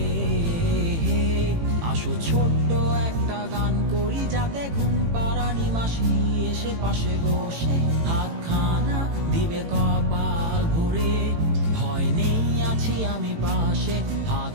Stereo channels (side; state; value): left; late; 18 ms